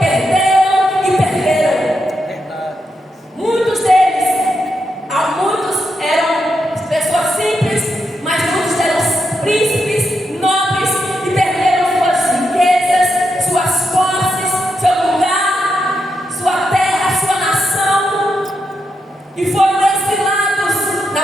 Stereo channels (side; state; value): both; normal; correlation 0.84